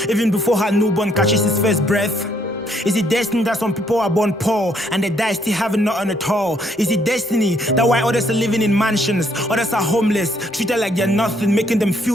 even before her newborn catches his first breath? Is it destined that some people are born poor and they die still having nothing at all? Is it destiny that while others are living in mansions, others are homeless, treated like they're nothing, making them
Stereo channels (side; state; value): both; normal; correlation 0.69